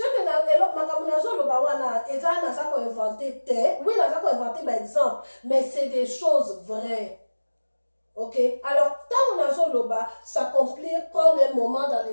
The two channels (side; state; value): both; inverted; correlation -1.00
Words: que na elok makamunazo lo ba wana ezana ça ko inventé oui na ça ko inventé par exemple mais c'est des choses vraies. Ok, alors, tant on a Zoloba, s'accomplir, prendre un moment dans